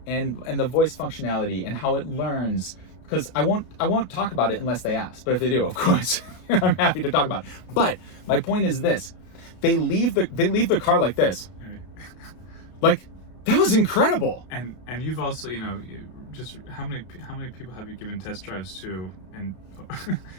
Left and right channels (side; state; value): right; late; 32 ms